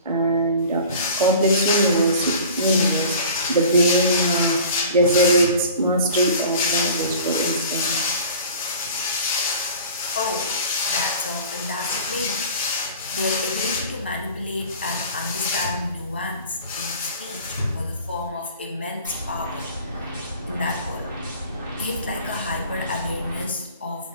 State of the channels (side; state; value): both; inverted; correlation -0.43